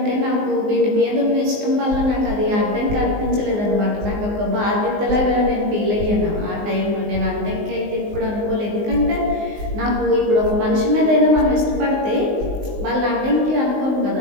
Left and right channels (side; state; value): left; late; 19 ms